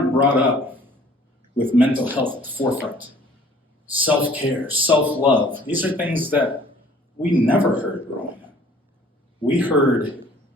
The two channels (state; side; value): normal; both; correlation 0.54